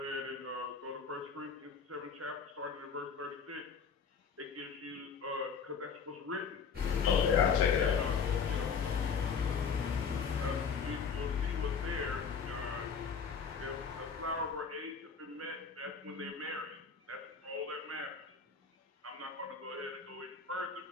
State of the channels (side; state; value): right; quieter; 6.0 dB